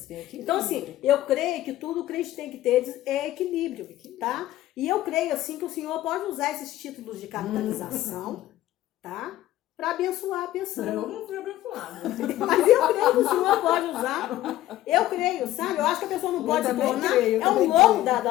Então, assim, eu creio que tudo o crente tem que ter é equilíbrio, tá? E eu creio, assim, que o Senhor pode usar esses títulos de capitalização, tá? Para abençoar a pessoa. Eu não fui abençoada. Mas eu creio que o Senhor pode usar. Eu creio, sabe? Eu acho que a pessoa não pode se tornar. É um louco da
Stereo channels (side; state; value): right; quieter; 14.6 dB